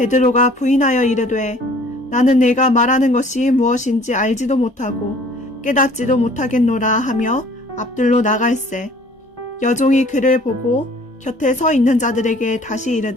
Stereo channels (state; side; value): normal; both; correlation 0.53